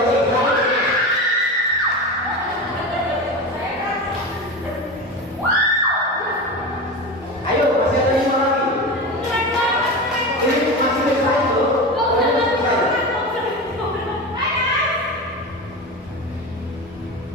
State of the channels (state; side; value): normal; both; correlation 0.25